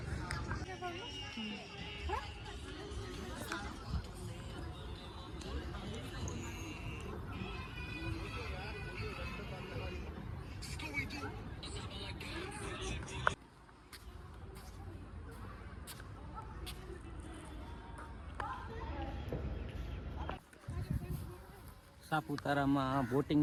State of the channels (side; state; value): both; identical; correlation 1.00